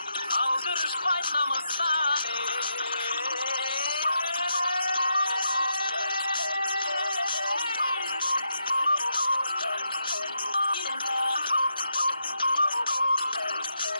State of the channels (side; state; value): both; inverted; correlation -0.82